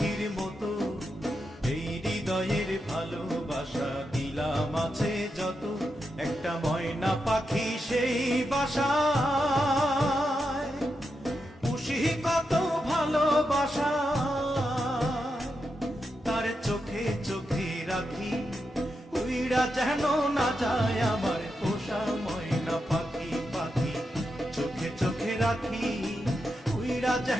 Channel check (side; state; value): both; normal; correlation 0.86